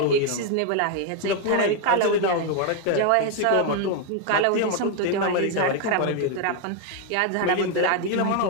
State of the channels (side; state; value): both; different; correlation 0.01